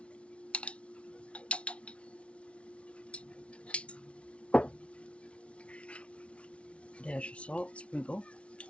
Dash of salt, sprinkle.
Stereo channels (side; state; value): right; late; 0.061 ms